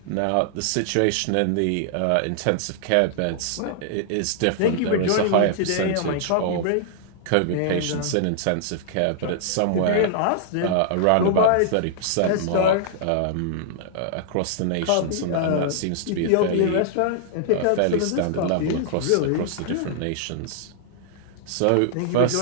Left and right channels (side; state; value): both; different; correlation -0.01